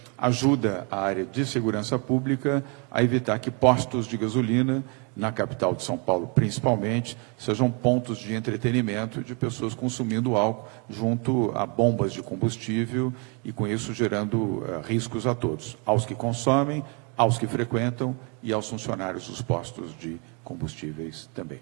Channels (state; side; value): quieter; left; 34.4 dB